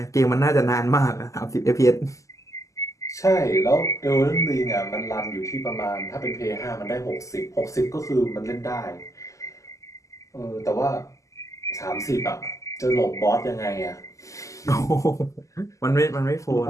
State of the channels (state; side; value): late; right; 0.16 ms